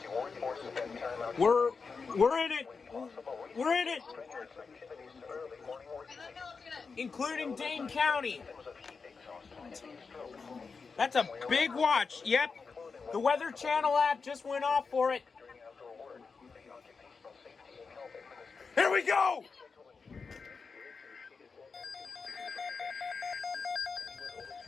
you work or spend time out. We're in it. We're in it. Including Dane County. That's a big watch. Yep. The Weather Channel app just went off for it. Here we go.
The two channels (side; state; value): right; quieter; 4.9 dB